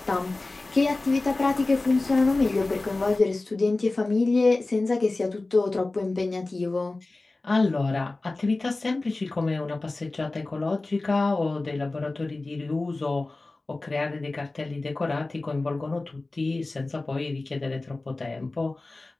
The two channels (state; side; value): quieter; right; 3.2 dB